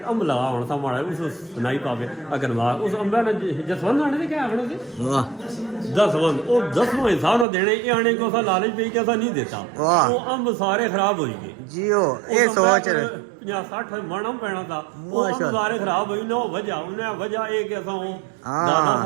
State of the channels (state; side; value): drops out; left; at 7.5 s